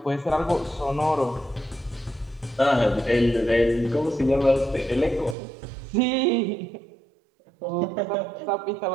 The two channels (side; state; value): left; drops out; at 5.4 s